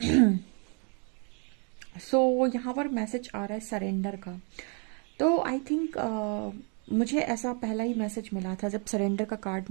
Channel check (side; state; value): left; quieter; 38.6 dB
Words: सो यहाँ पर मैसेज आ रहा है सरेंडर का। तो आई थिंक मुझे ऐसा पहला ही मैसेज मिला था जब सरेंडर का कार्ड